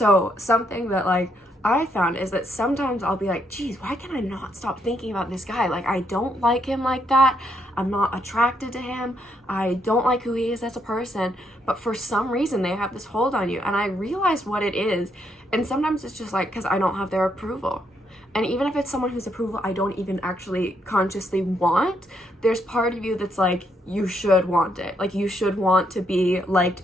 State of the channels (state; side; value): normal; both; correlation 0.75